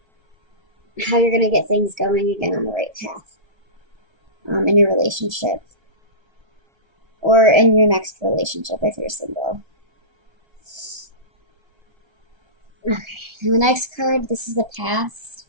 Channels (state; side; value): late; left; 1.3 ms